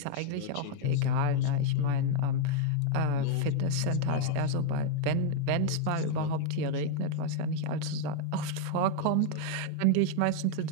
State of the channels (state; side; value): different; both; correlation 0.00